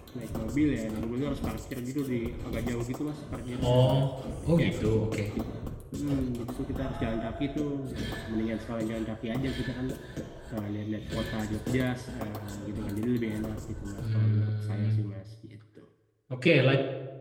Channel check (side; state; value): both; identical; correlation 1.00